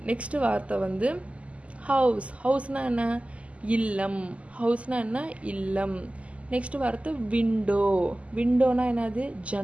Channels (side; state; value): left; late; 0.064 ms